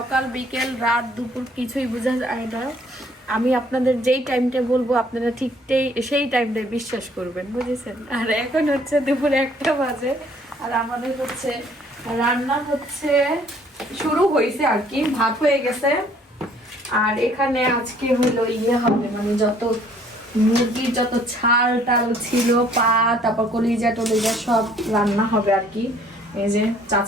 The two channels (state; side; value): normal; both; correlation 0.60